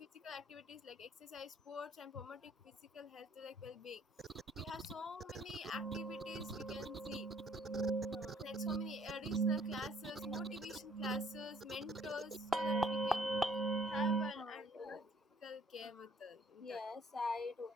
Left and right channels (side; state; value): both; normal; correlation 0.62